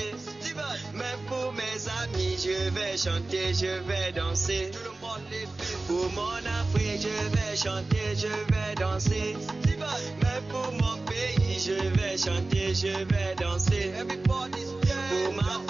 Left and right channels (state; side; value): quieter; left; 3.2 dB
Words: Mais pour mes amis, je vais chanter, je vais danser. Pour mon Afrique, je vais chanter, je vais danser. Mais pour mon pays, je vais chanter, je vais danser. Pour ma